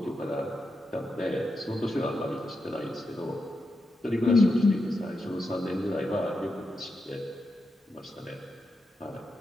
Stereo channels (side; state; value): both; normal; correlation 0.87